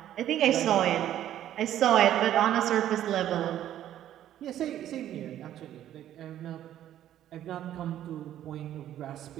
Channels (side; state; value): left; quieter; 11.8 dB